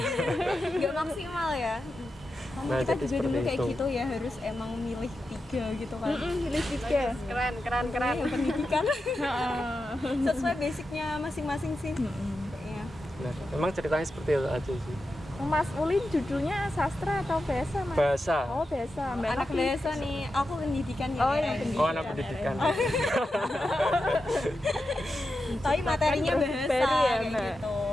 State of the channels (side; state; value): both; normal; correlation 0.89